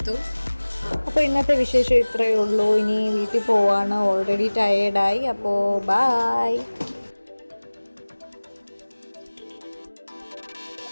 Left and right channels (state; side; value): inverted; both; correlation -1.00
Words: അപ്പോൾ ഇന്നത്തെ വിശേഷം ഇത്രയേ ഉള്ളൂ. ഇനി വീട്ടിൽ പോവാണ്, ഓൾറെഡി ടയേർഡായി. അപ്പോൾ ബായ്.